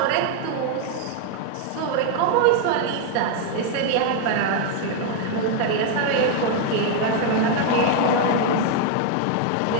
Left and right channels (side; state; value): both; different; correlation 0.00